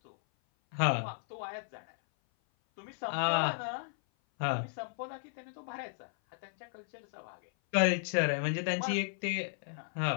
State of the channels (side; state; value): right; silent; 55 dB below the other